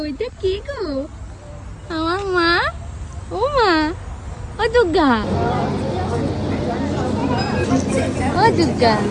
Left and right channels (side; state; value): both; identical; correlation 1.00